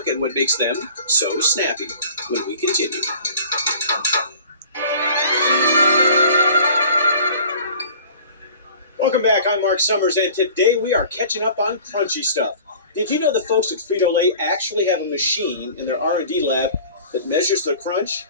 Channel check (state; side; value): inverted; both; correlation -0.46